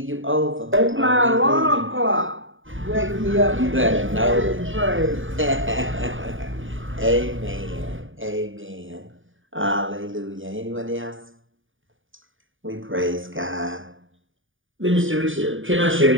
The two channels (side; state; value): left; late; 0.57 ms